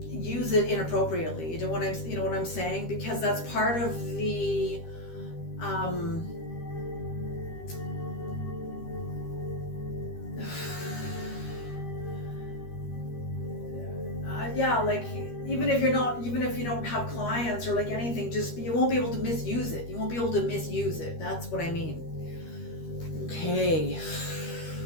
it inappropriately. You know what I'm saying? Because that's part of the like even if you don't have clients or like anything, just you won't be able to misuse it. You won't be able to misuse it. That's what I mean. Okay.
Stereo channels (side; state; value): right; late; 13 ms